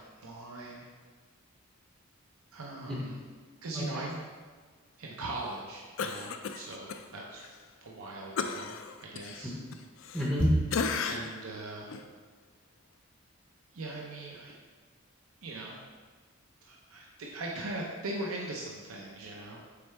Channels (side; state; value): both; normal; correlation 0.50